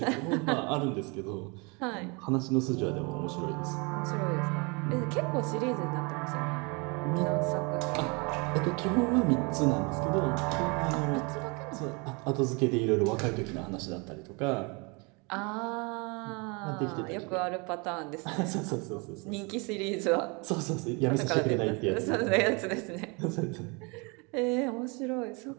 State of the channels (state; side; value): quieter; left; 30.3 dB